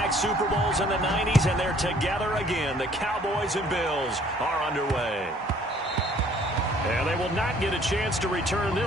Super Bowls in the 90s, and they're together again. The Cowboys and Bills are underway. And they will not get a chance to return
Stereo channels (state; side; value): normal; both; correlation 0.58